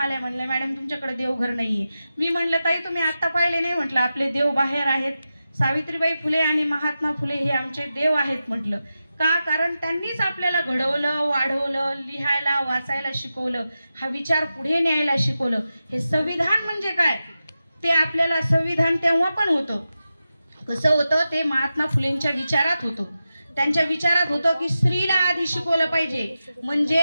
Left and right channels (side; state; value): both; inverted; correlation -0.91